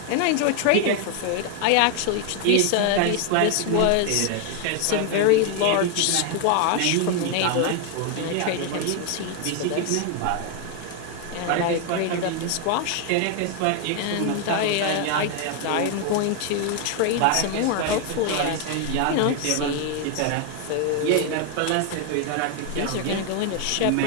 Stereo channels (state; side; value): different; both; correlation 0.01